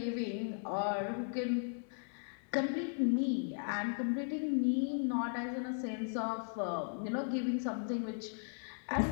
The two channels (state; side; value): silent; right; digital silence